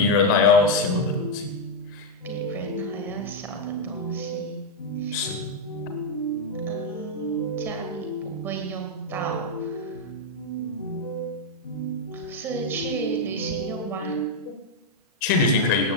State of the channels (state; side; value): normal; both; correlation 0.00